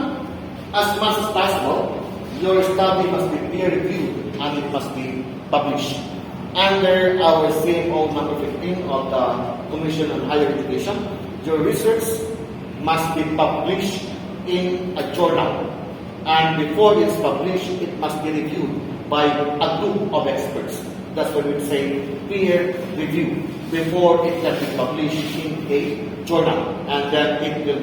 as much as possible, your study must be peer-reviewed and it must be published. Under our CMO number 15 of the Commission on Higher Education, your research must be published in a journal. And before it's published, it must be reviewed by a group of experts. That's what we say peer review before it can be published in a journal, and then it will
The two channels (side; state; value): both; identical; correlation 1.00